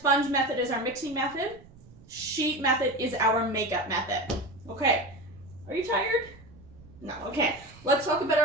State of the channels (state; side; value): noise; right; rumble, 22 dB below the sound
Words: method is our mixing method. Sheet method is our makeup method. Okay, are you tired? No, okay. Let's talk about